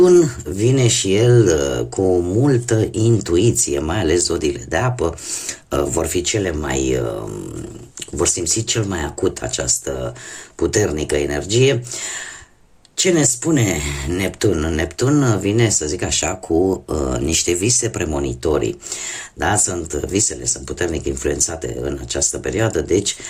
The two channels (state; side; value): identical; both; correlation 1.00